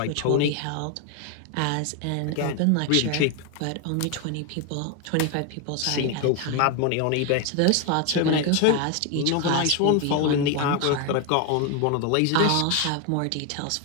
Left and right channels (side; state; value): both; different; correlation 0.01